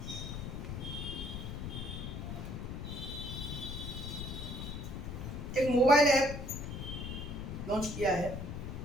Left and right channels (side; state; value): left; noise; rumble, 5 dB below the sound